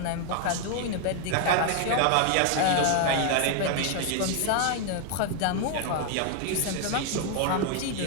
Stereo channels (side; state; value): both; different; correlation 0.00